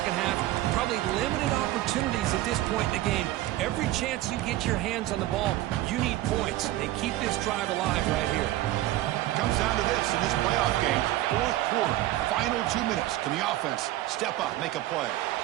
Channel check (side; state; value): left; quieter; 15.6 dB